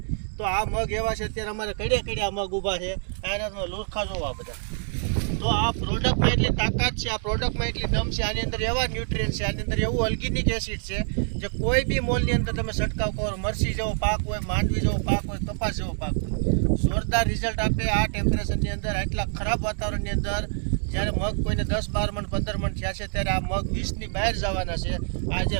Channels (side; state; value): left; silent; 61 dB below the other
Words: તો આ મગ એવા છે, અત્યારે અમારે કડ્યા મગ ઊભા છે, આના લુરખા જોવા બધા. તો આ પ્રોડક્ટમાં એટલી તાકાત છે, આ પ્રોડક્ટમાં એટલી દમ છે, આની અંદર એવા ન્યુટ્રિયન્ટ છે, આની અંદર એવું ઓર્ગેનિક એસિડ છે જે કોઈ બી મોલની અંદર તમે છંટકાવ કરો, મરસી જેવો પાક હોય, માંડવી જેવો પાક હોય, કપાસ જેવો પાક હોય, જોરદાર રિઝલ્ટ આપે. આ ટેમ્પરેચરની અંદર, આટલા ખરાબ વાતાવરણની અંદર જ્યારે મગ કોઈને 10-12 મણ 15 મણ થયા છે, ત્યારે આ મગ 20ની બહાર જવાના છે. આ જે